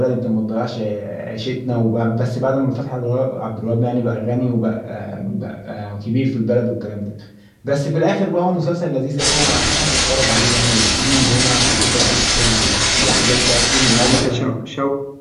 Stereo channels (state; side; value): identical; both; correlation 1.00